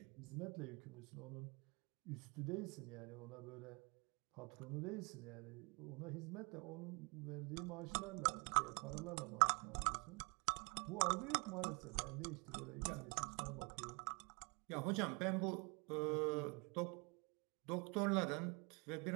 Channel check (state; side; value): quieter; left; 30.8 dB